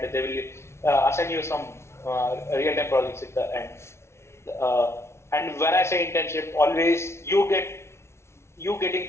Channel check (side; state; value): right; late; 0.13 ms